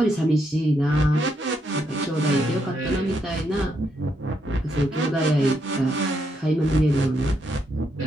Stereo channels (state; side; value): normal; both; correlation 0.78